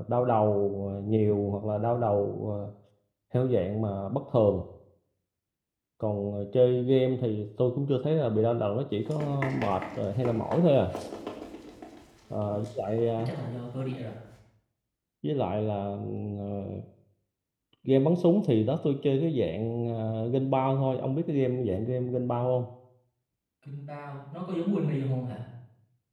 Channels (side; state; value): both; identical; correlation 1.00